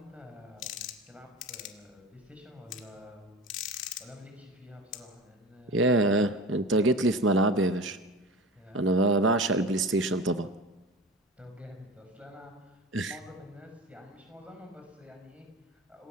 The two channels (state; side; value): normal; both; correlation 0.31